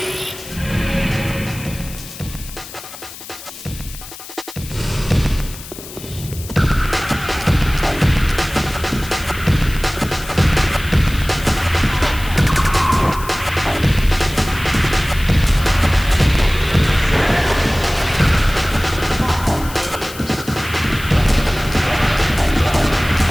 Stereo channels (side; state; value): left; noise; hiss, 14 dB below the sound